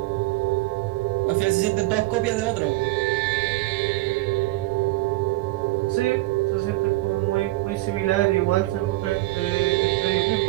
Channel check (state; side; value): quieter; left; 19.7 dB